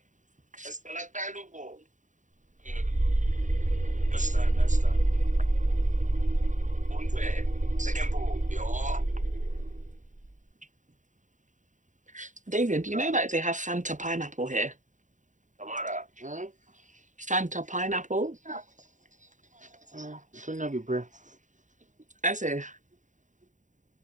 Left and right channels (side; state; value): left; late; 0.36 ms